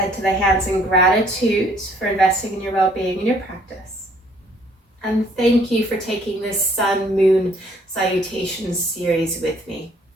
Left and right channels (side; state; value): both; normal; correlation 0.61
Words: to the hands in gratitude for investing in your well-being and your practice. And thank you for taking this Sun Moon Salutation series with me.